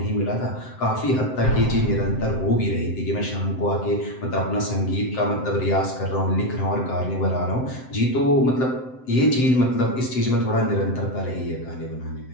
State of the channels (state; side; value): late; right; 7.8 ms